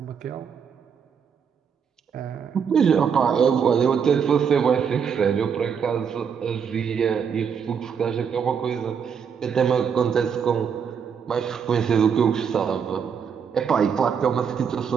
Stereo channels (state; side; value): quieter; left; 7.0 dB